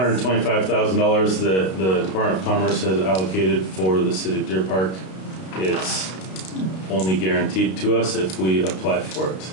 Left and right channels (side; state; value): right; late; 32 ms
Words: that the Department of Commerce has allocated for the city of Deer Park. It's only guaranteed to us if we apply for it.